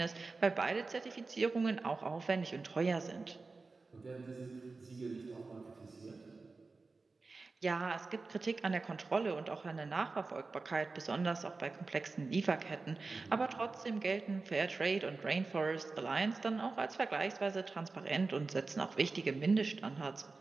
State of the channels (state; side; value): quieter; left; 3.9 dB